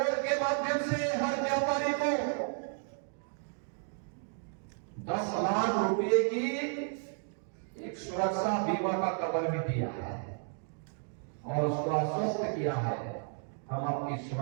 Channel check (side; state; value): left; silent; 56 dB below the other